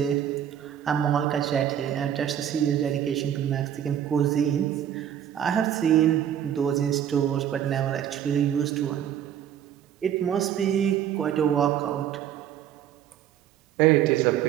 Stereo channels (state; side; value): quieter; left; 10.1 dB